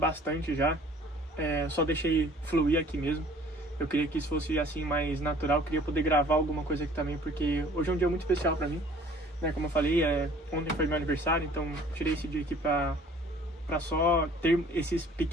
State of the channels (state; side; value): normal; both; correlation 0.52